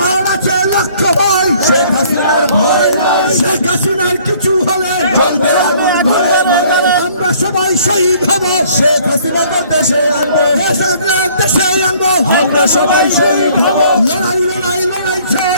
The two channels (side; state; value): both; inverted; correlation -0.58